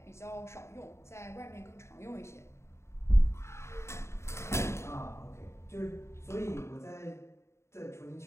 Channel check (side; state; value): right; late; 0.13 ms